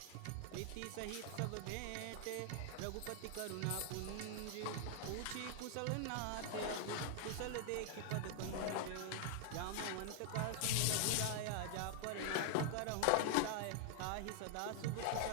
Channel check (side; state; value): both; different; correlation 0.00